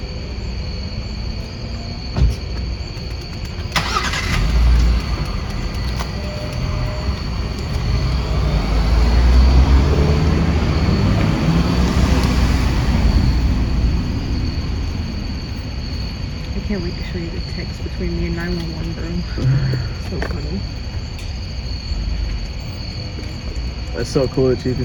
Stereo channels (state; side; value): identical; both; correlation 1.00